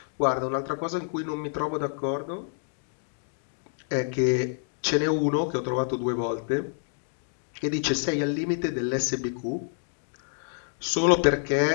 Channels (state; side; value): silent; right; digital silence